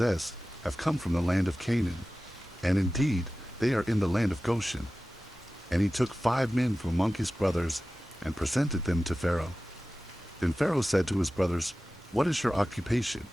have come from the land of Canaan, and indeed they are in the land of Goshen. And he took 5 men from among his brothers, and presented them to Pharaoh. Then Pharaoh said to his brothers, What is your occupation?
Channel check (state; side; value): normal; both; correlation 0.96